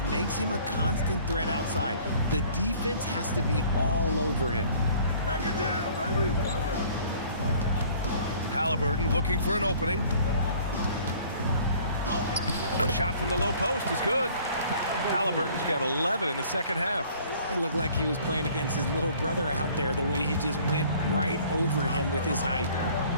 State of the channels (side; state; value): both; inverted; correlation -0.54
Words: makes him a constant threat outside. The defense has to be all over him. Back it down, baby. Halliburton looking for an opening. Shot from the low post is good. Halliburton's got 11 in the second half. It looked like he was playing against his little brother out there, the way he just went right over him with his height.